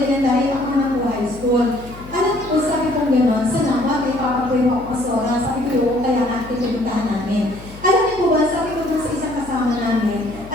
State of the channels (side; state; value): left; noise; hum, 18 dB below the sound